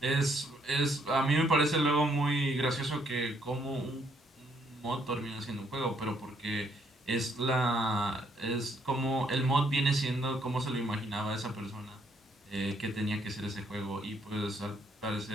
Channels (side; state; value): both; normal; correlation 0.70